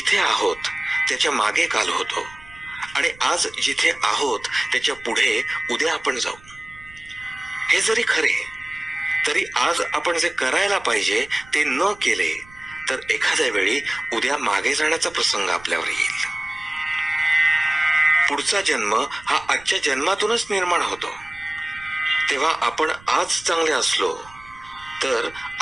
आहोत त्याच्या मागे काल होतो आणि आज जिथे आहोत त्याच्या पुढे उद्या आपण जाऊ. हे जरी खरे तरी आज आपण जे करायला पाहिजे ते न केले तर एखाद्या वेळी उद्या मागे जाण्याचा प्रसंग आपल्यावर येईल. पुढचा जन्म हा आजच्या जन्मातूनच निर्माण होतो. तेव्हा आपण आज चांगले असलो तर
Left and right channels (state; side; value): noise; right; rumble, 23 dB below the sound